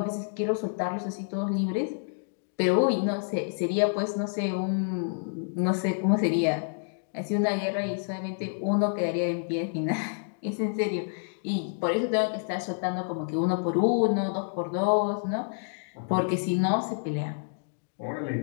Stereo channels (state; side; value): silent; right; digital silence